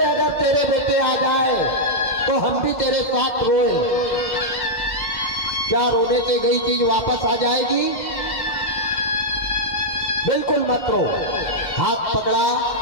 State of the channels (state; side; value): late; right; 1.5 ms